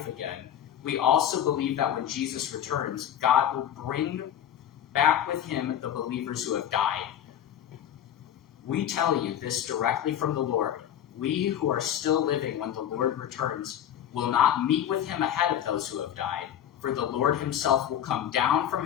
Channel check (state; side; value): quieter; right; 10.3 dB